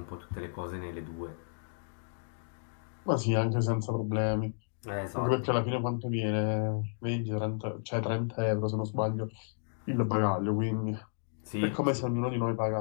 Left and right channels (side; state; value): right; silent; digital silence